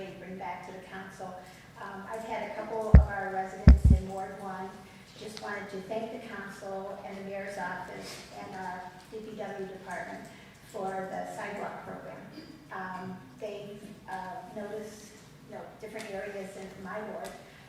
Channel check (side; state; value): both; identical; correlation 1.00